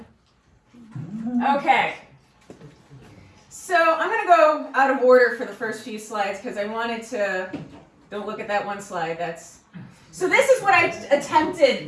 Okay. So I'm going to go out of order for the first few slides because I wanted to, don't look at that one slide. So this is what I attempted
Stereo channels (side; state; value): both; identical; correlation 1.00